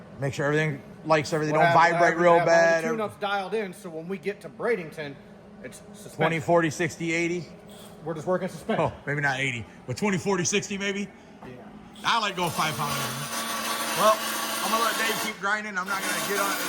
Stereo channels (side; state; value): both; identical; correlation 1.00